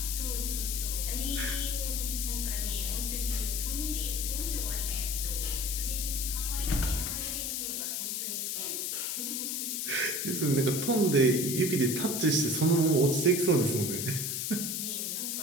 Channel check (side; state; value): left; noise; hiss, 1 dB below the sound